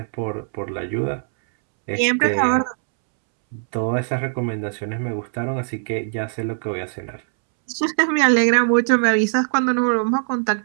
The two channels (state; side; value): silent; left; 65 dB below the other